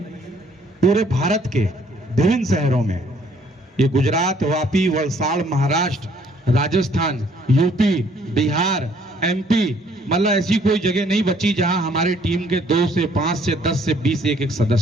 पूरे भारत के विभिन्न शहरों में। ये गुजरात, वापी, वलसाड़, महाराष्ट्र, राजस्थान, यूपी, बिहार, एमपी, मतलब ऐसी कोई जगह नहीं बची जहां हमारी टीम के 2 से 5 से 10 से 20 एक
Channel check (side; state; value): both; normal; correlation 0.62